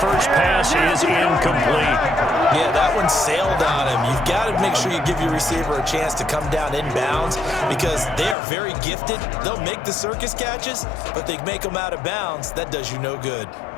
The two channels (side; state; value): right; drops out; at 8.3 s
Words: pass is incomplete. Yeah, that one sailed on him. You've got to make sure you give your receiver a chance to come down inbounds because they are very gifted. They'll make the circus catches, but they make them out of bounds. That does you no good.